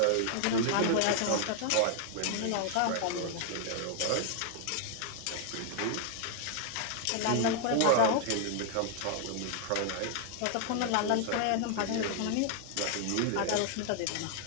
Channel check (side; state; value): both; different; correlation 0.00